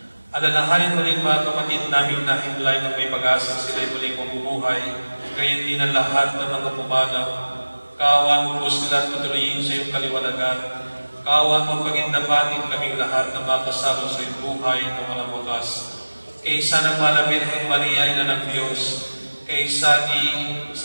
Alalahanin mo rin mga kapatid namin na himlay ng may pag-asa sila'y muling mabubuhay, gayon din ang lahat ng mga pumanaw. Kaawan mo po sila at patuloyin sa iyong kaliwanagan. Kaawan mo pagindapatin kaming lahat na makasama sa iyong buhay na walang wakas. Kaysa ng Mahal na Birhen Maria, Ina ng Diyos, kaysa ni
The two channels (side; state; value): both; inverted; correlation -1.00